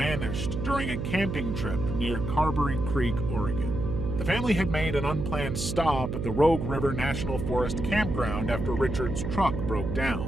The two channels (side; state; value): right; noise; hum, 3 dB below the sound